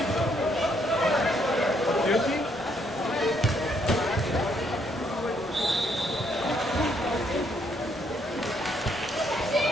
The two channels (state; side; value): normal; both; correlation 0.71